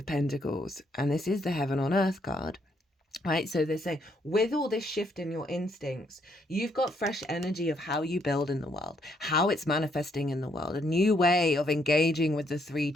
Pentacles. And this is the Heaven on Earth card. Right, so they're saying with all this shift in your instincts, you've got fresh energy of how you build in the world, how it's manifesting in the world, a new way of engaging with the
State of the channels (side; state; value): both; normal; correlation 0.72